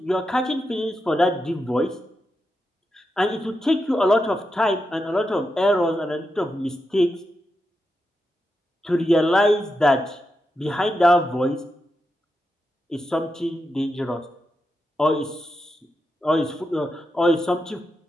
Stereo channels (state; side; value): normal; both; correlation 0.87